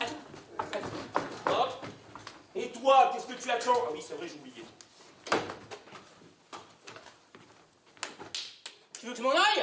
allez. Allez. Hop. Et toi, qu'est-ce que tu attends? Ah oui, c'est vrai, j'ai oublié. Tu veux que je m'en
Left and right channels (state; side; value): identical; both; correlation 1.00